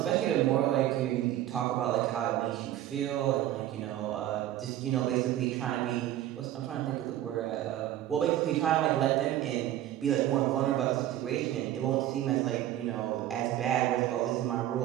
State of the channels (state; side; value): quieter; left; 13.0 dB